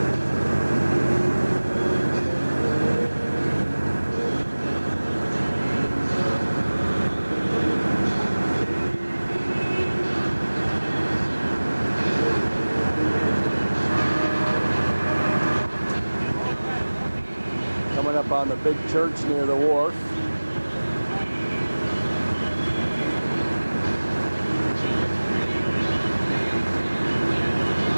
Coming up on the big church near the wharf.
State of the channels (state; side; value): inverted; both; correlation -1.00